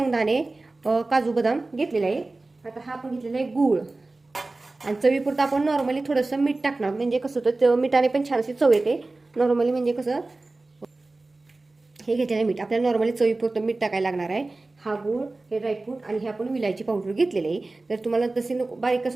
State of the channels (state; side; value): quieter; left; 3.2 dB